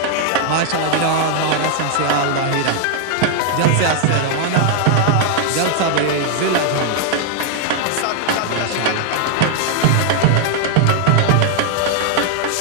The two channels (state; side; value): different; both; correlation 0.00